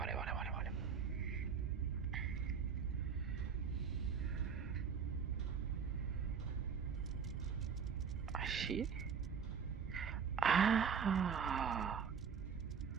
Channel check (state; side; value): quieter; left; 6.6 dB